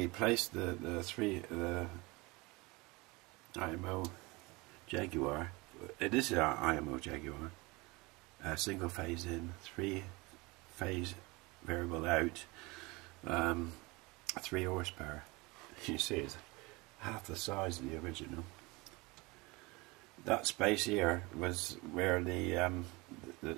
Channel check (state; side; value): quieter; left; 24.6 dB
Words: the IMO Jaguar. It is an IMO Jaguar. Single phase in, 3-phase variable out, 3 horsepower. You see, it's half the size of the original. That space here was where the